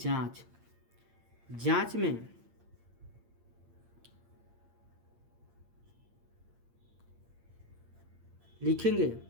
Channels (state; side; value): late; left; 8.7 ms